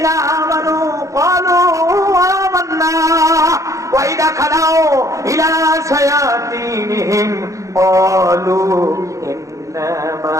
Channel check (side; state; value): left; late; 0.15 ms